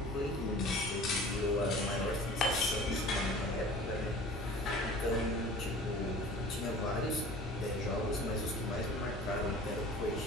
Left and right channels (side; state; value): both; normal; correlation 0.43